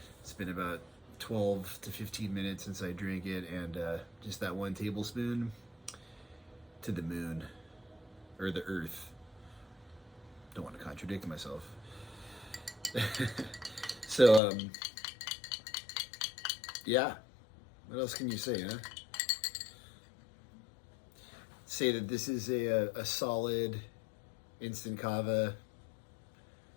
been about 12 to 15 minutes since I drank it, and just that 1 tablespoon to the moon, or the earth. Don't want to contradict myself. So, yeah, what else can you say, huh? Say that this is a solid instant kava.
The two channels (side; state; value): right; drops out; at 14.4 s